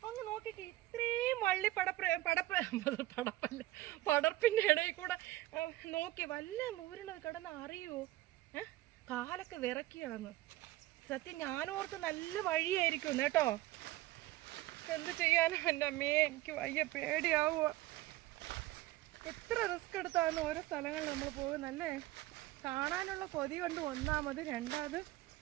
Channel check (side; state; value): left; quieter; 17.3 dB